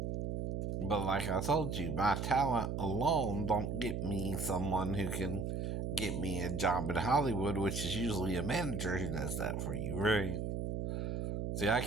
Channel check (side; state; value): right; noise; hum, 2 dB below the sound